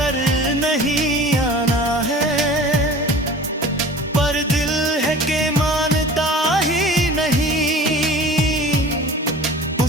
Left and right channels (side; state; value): both; normal; correlation 0.41